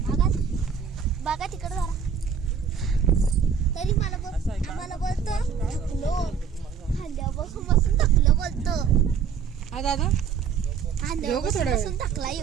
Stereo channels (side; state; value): left; quieter; 6.8 dB